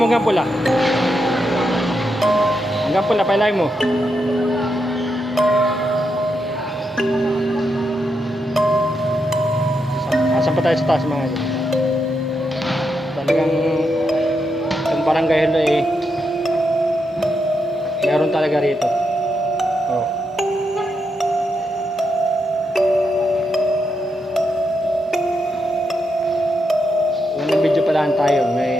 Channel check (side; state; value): both; normal; correlation 0.83